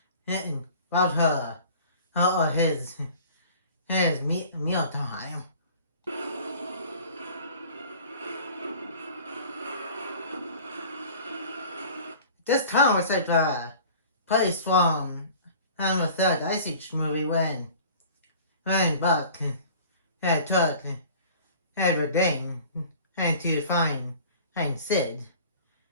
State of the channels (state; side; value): inverted; both; correlation -0.45